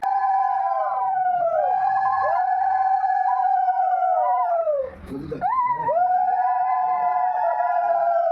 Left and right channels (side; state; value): both; identical; correlation 1.00